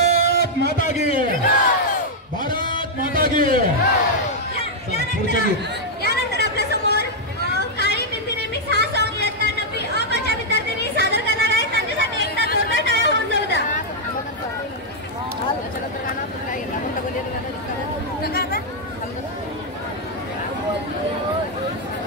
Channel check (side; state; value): both; normal; correlation -0.03